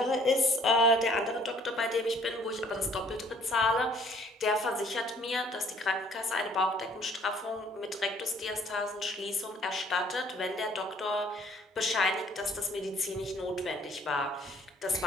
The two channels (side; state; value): both; normal; correlation 0.58